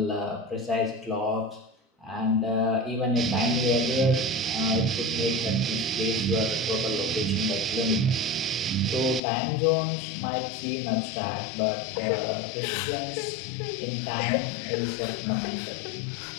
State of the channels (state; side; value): drops out; right; at 9.2 s